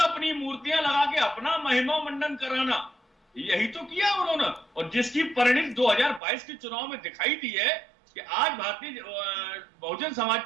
अपनी मूर्तियां लगा के अपना महिमा मंडन कराना, यही तो किया उन्होंने। और जिसकी परिणति 2022 के चुनाव में दिखाई दी है कि आज भारतीय बहुजन समाज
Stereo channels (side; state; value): left; drops out; at 6.2 s